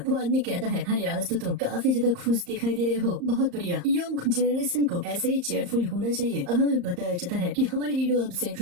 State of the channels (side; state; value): left; late; 34 ms